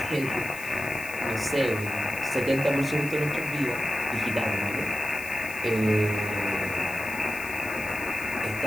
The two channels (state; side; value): noise; left; hiss, 14 dB below the sound